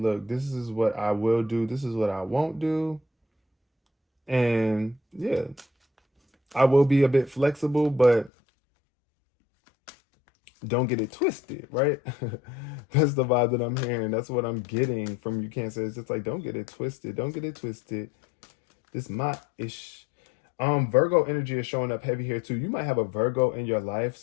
this is what I will do. This is what I won't do. And yeah, I will be a bit flexible, but don't get it twisted, right? That's the vibe that I'm hearing. That's what I'm getting from you, Cancer. It's just like, don't get it twisted. Don't get it twisted. This my ish. Virgo energy is showing up heavy here too. You might have a Virgo in your life,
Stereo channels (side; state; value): right; drops out; at 8.3 s